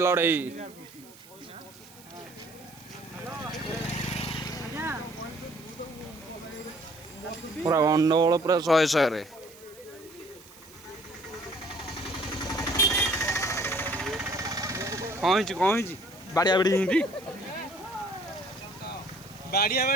पूरा गंडगोल पूरा 100 रे कौन बाड़िया बाड़ी हिंदी बाड़िया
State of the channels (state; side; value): noise; right; hiss, 22 dB below the sound